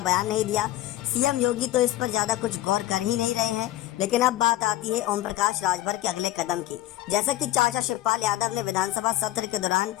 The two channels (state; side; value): quieter; right; 15.2 dB